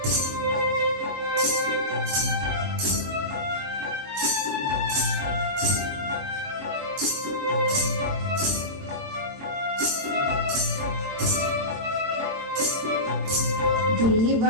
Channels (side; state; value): left; late; 22 ms